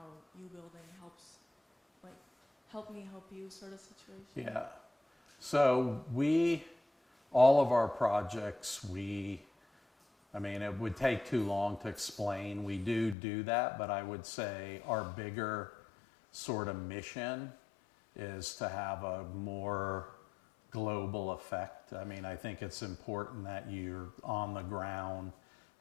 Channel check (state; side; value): drops out; right; at 13.2 s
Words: you building helps, like help me help you sort of situation. Yeah. So all of our projects, I mean, it would take too long to explain. We do that, but I would say our bigger sort of mission is to have a more global global effect. I mean, I think it's important that you're on the ground